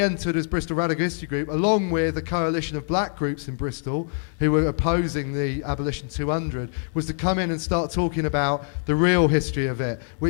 entered as Bristol Radical History Group, along with a coalition of black groups in Bristol who were opposing the Abolition 200, was to come in and start talking about the real history of it,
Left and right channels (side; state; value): right; silent; 61 dB below the other